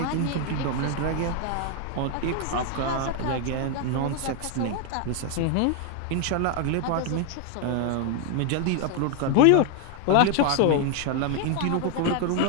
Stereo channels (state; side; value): different; both; correlation 0.01